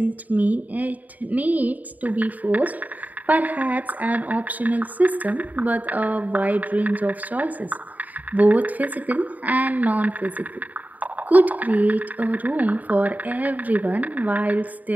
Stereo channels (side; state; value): left; late; 0.077 ms